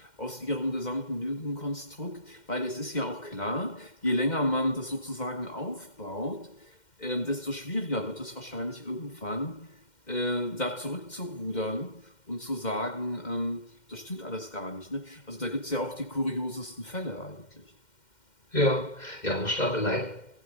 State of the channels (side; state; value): right; late; 2.1 ms